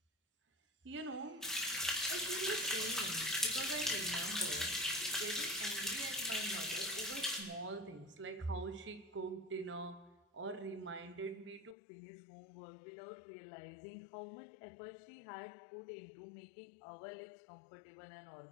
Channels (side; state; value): right; drops out; at 11.8 s